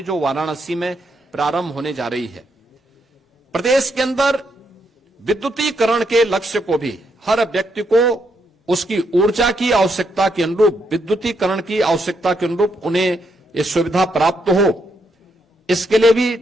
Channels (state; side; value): normal; both; correlation 0.78